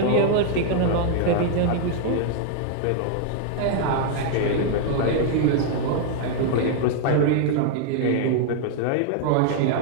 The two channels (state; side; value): different; both; correlation 0.00